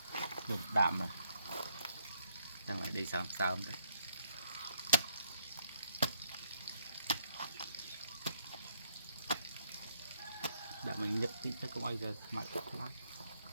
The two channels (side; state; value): both; inverted; correlation -0.71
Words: được đạm rồi đang lại đi sao đấy đã mình nhập tí cho không ai giờ mặt lắm